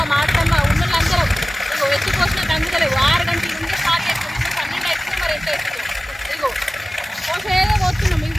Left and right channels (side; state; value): both; normal; correlation 0.97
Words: మా అత్తమ్మ ఉన్నోళ్ళందరం ఎత్తిపోసినట్టు అందుకలేవు. 6 గంటల నుండి స్టార్ట్ చేస్తున్నాం. 12 అవుతుంది, మరి ఎంత అవుతుంది. ఇగో పోసేదో పోతున్నాం. మీకు